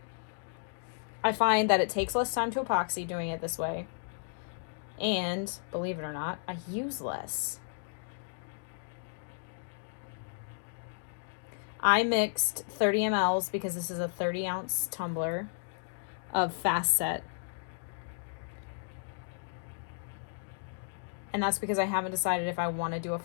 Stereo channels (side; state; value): right; silent; digital silence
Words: I find that it takes less time to epoxy doing it this way. And, believe it or not, I use less. I mixed 30 mLs because this is a 30-ounce tumbler of Fast Set. And that's because I haven't decided if I want to do a